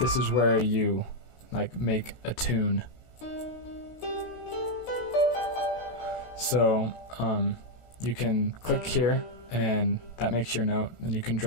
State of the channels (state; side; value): late; right; 17 ms